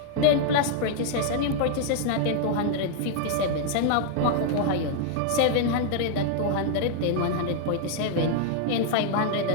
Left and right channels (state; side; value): different; both; correlation -0.01